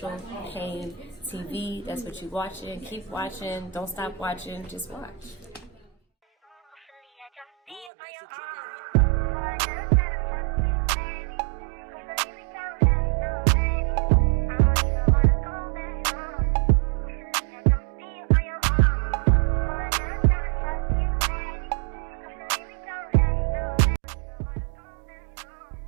Payne TV. That's what you're watching. Keep watching. Don't stop watching. Just watch. There are lots of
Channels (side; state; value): left; drops out; at 7.9 s